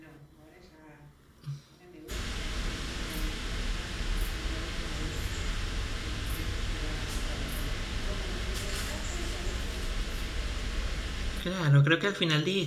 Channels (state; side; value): identical; both; correlation 1.00